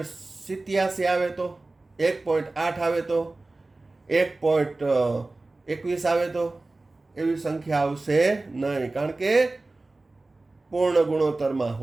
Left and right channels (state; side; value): quieter; left; 3.1 dB